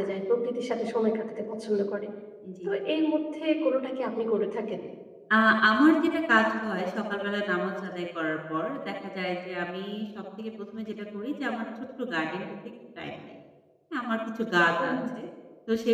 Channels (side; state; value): both; identical; correlation 1.00